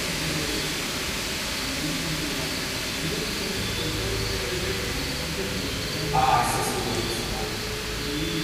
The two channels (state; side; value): identical; both; correlation 1.00